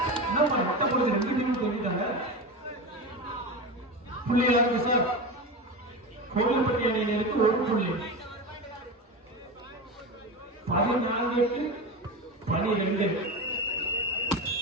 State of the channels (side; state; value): both; normal; correlation 0.23